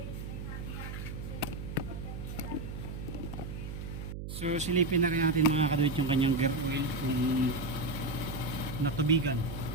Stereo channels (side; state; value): right; noise; hum, 7 dB below the sound